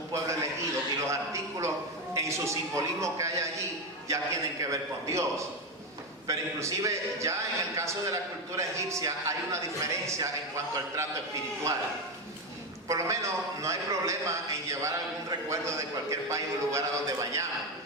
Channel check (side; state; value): both; normal; correlation 0.12